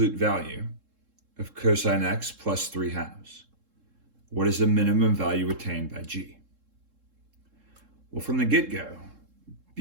value of cosine x plus 3/2. What is the minimum value attained by g? Well, from the get-go,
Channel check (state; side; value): late; left; 3.7 ms